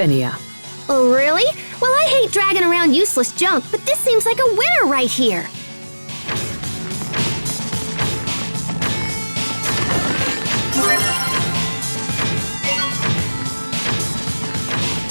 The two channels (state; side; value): inverted; both; correlation -1.00